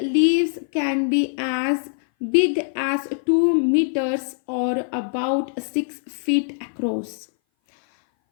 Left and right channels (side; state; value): right; silent; 59 dB below the other